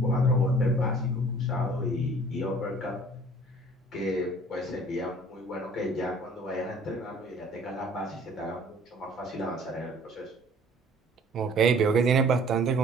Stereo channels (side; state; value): both; normal; correlation 0.53